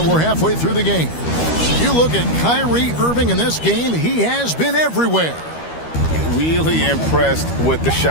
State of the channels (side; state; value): right; late; 13 ms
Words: We're halfway through the game. You look at Kyrie Irving in this game, he has been everywhere. Really impressed with the